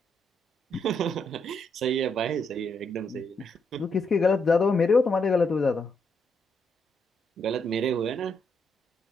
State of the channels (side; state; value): both; normal; correlation 0.77